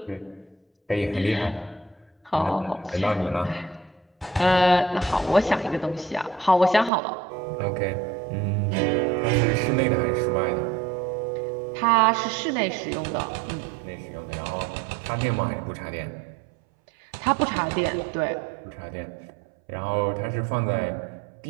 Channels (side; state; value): left; drops out; at 6.9 s